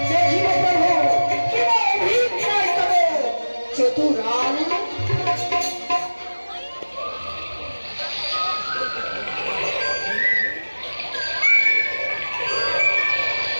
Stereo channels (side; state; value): both; inverted; correlation -1.00